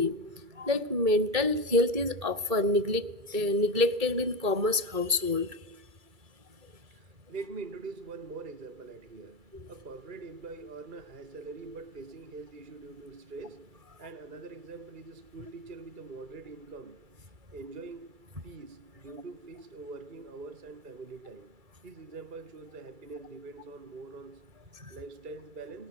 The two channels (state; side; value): late; left; 2.3 ms